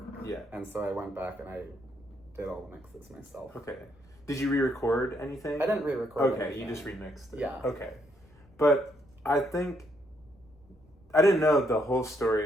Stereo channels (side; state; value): left; noise; rumble, 28 dB below the sound